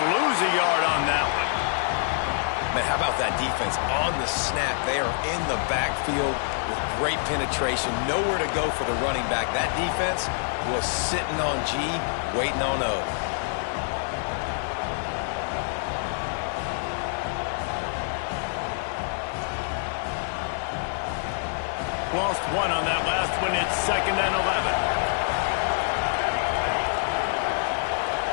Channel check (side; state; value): right; silent; digital silence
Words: lose a yard on that one. Man, how about that defense on the snap? They are in the backfield with great penetration. Nowhere to go for the running back. That defense was sitting on G, waiting on O. Lost one on that last one. It's 2nd and 11.